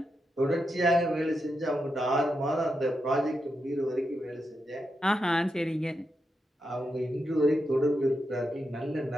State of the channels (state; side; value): normal; both; correlation 0.86